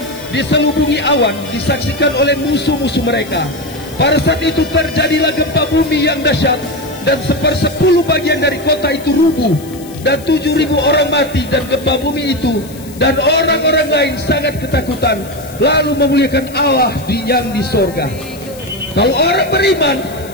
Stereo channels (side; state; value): left; noise; hiss, 20 dB below the sound